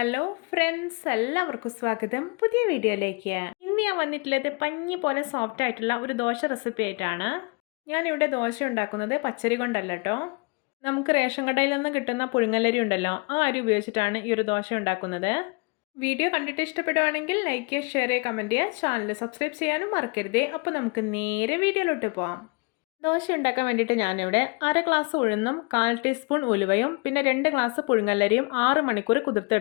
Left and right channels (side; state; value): right; quieter; 30.7 dB